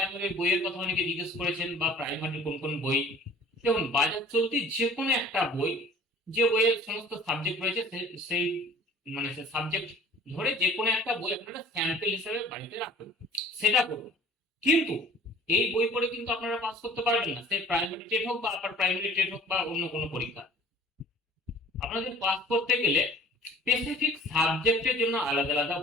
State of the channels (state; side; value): normal; both; correlation 0.48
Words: বইয়ের কথা অনেকে জিজ্ঞেস করেছেন, বা প্রাইমারি কোন কোন বই। দেখুন, বাজার চলতি যে কোনো একটা বই, যে বইয়ের সমস্ত সাবজেক্ট রয়েছে সেই মানে সে সাবজেক্ট ধরে যে কোনো একটা বই আপনারা স্যাম্পল হিসেবে বাড়িতে রাখুন, সেটা করুন। কিন্তু এই বই পড়ে কিন্তু আপনারা পাস করতে পারবেন না, সে প্রাইমারি টেট হোক বা আপার প্রাইমারি টেট হোক বা অন্য কোনো পরীক্ষা। আপনাদের পাস করতে গেলে স্পেসিফিক সাবজেক্টের জন্য আলাদা আলাদা